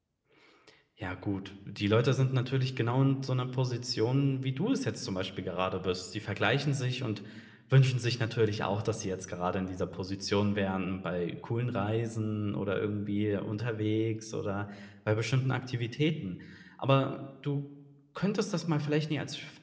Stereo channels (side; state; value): both; identical; correlation 1.00